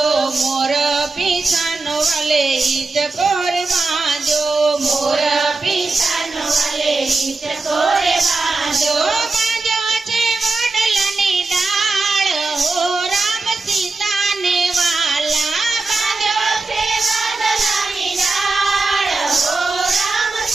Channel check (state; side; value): quieter; left; 3.6 dB